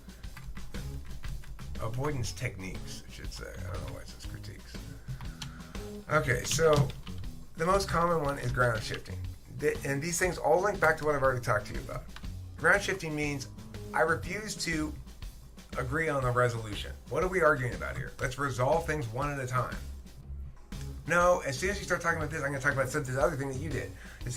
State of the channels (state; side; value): identical; both; correlation 1.00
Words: Avoidance techniques, I should say. I don't know why it says critiques. Okay, so the most common one is ground shifting. And these things all link back to what I've already talked to you about. Ground shifting means I refuse to agree on the resolution. What are we arguing about here? Let's resolve things one at a time. No, as soon as you start talking about this, I'm going to talk about this other thing that you did. It's